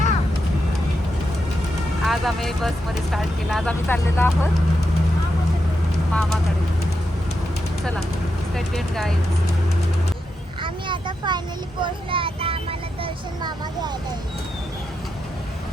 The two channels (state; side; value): normal; both; correlation 0.85